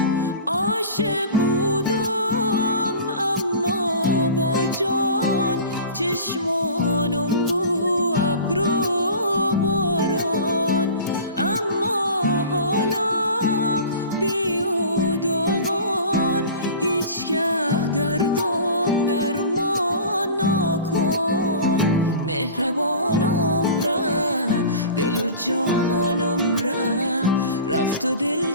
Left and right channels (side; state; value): both; inverted; correlation -0.38